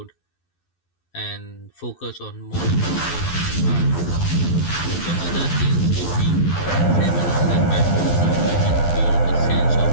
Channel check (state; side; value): late; right; 12 ms